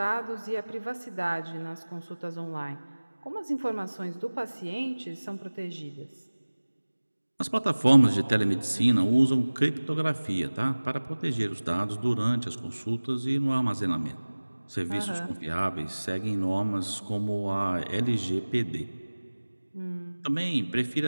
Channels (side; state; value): both; inverted; correlation -1.00